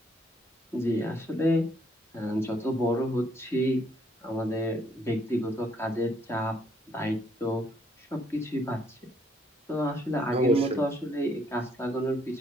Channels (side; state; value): both; normal; correlation 0.68